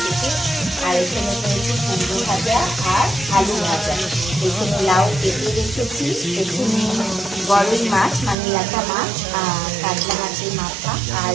খেতে। আর এখানে করেছি কুমড়ো ভাজা আর আলু ভাজা। এখানে লাউ কেটে রেখেছি, এখানে গরই মাছ মানে ল্যাটা মাছ আর কাতলা মাছের মাথা আর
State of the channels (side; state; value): left; drops out; at 8.3 s